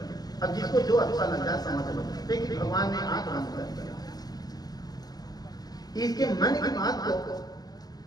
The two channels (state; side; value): late; right; 0.19 ms